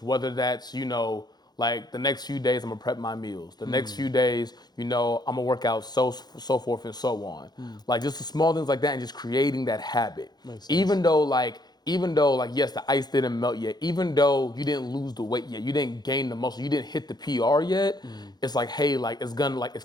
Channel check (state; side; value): late; right; 0.20 ms